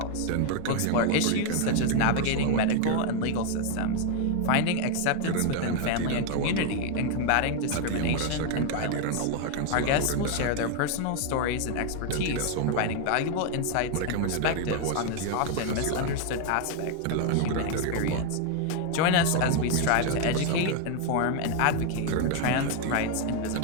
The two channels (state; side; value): different; both; correlation 0.01